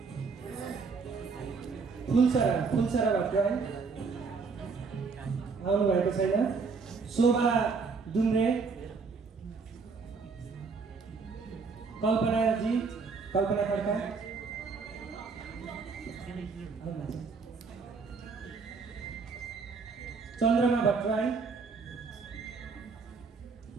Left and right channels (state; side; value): quieter; left; 4.9 dB